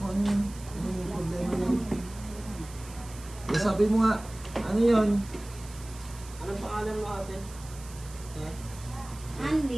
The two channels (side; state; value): right; noise; hiss, 18 dB below the sound